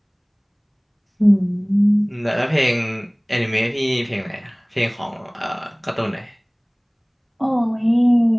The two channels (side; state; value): both; identical; correlation 1.00